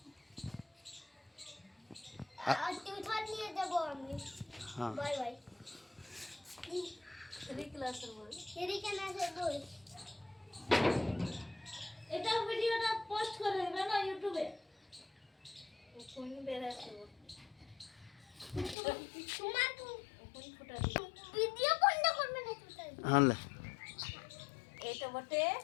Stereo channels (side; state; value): right; drops out; at 18.8 s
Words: আর টিউশন নিয়ে দেবো আমি হ্যাঁ বাই বাই 3 ক্লাসের বই এদিকে না সে বই এটা ভিডিওটা পোস্ট করে দেবে না ইউটিউবে কোন বেরাছে তোমার কোন ফুটা ভিডিও বন্ধ করবে না তুমি হ্যাঁ এটা বটে